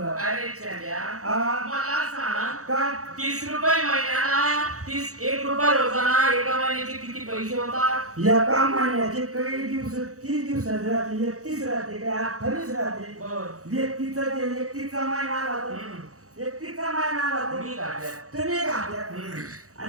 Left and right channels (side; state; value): left; late; 0.65 ms